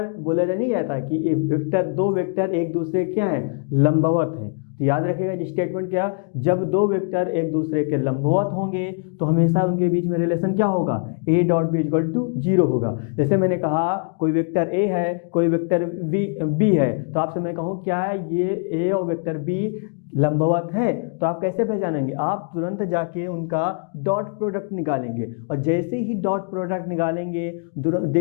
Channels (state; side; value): quieter; right; 38.8 dB